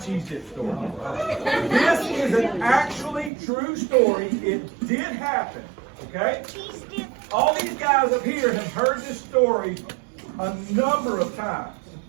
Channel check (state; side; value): drops out; left; at 3.3 s